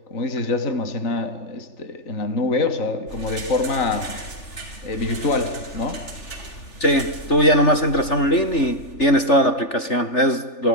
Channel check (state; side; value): late; right; 3.4 ms